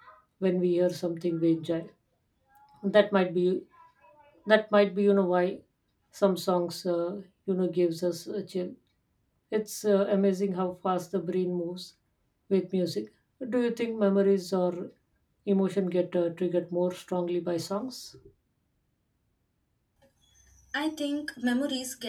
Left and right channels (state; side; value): identical; both; correlation 1.00